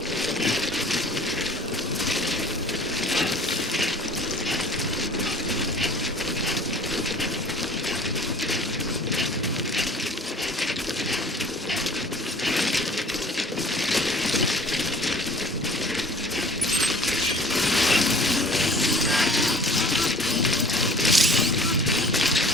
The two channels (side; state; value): both; normal; correlation 0.48